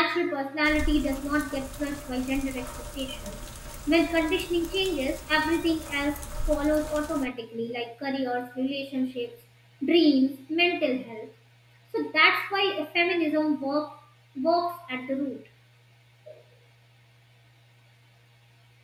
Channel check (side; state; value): both; identical; correlation 1.00